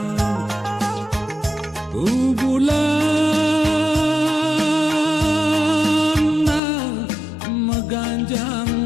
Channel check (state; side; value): drops out; right; at 6.6 s